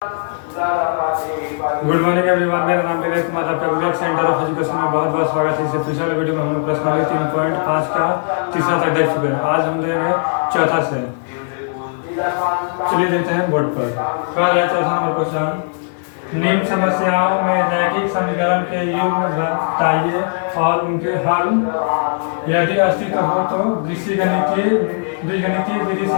गुड मॉर्निंग एवरीवन, मेरा नाम विवेक कुमार, आपका विवेक सेंटर ऑफ एजुकेशन में बहुत बहुत स्वागत है। इससे पिछले वीडियो में हम लोग प्रश्नावली 3.5 का तीसरा तक देख चुके हैं। आज हम देंगे चौथा से। चलिए देखते हैं बोर्ड पर। क्या है चौथा नंबर क्वेश्चन। निम्न समस्याओं में रैखिक समीकरण के युग्म बताइए और उनके हल यदि अस्तित्व हो तो बीजगणितीय विधि से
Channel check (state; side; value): silent; right; digital silence